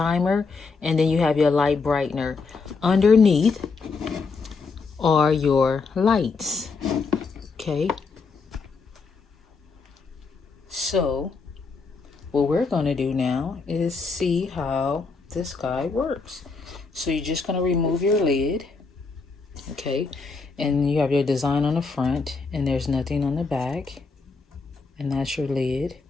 And then you have your light brightener. Underneath are your lights. Okay. So what we're going to do now is see how this guy works. So you're just going to remove your lid. Okay. And you have your design on the front and there's nothing on the back. And that's your lid.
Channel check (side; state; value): right; quieter; 4.5 dB